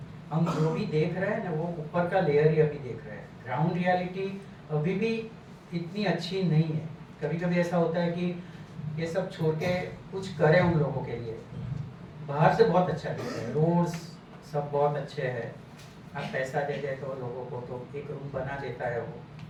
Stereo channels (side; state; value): both; identical; correlation 1.00